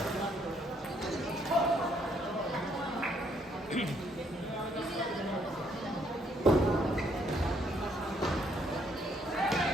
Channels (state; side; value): normal; both; correlation 0.69